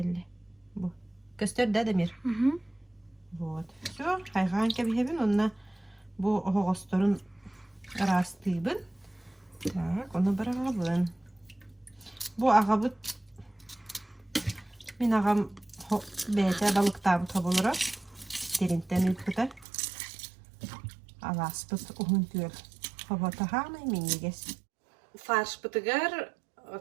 Бу. Көстөр дә демир. Вот. Всё, хайган кәбиһәбен, онна бу хогосторун растыйбын. Так, оны барабын. Bu ağabıt min ağam beyte balıkta bu tabulara derinten ülküde alaspıt uhun tüyel havata hanay minniges farşpıtıgar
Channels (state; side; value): drops out; left; at 19.7 s